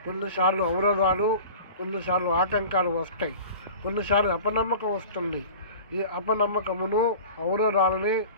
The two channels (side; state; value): both; inverted; correlation -0.38